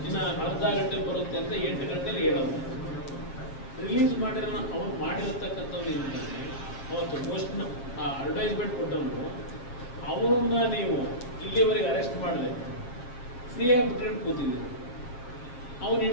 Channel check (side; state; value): right; late; 7.9 ms